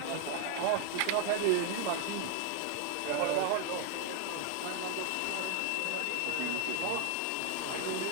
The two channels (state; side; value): different; both; correlation 0.00